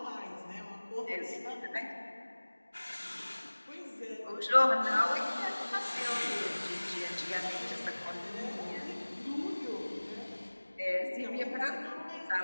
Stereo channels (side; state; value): both; inverted; correlation -1.00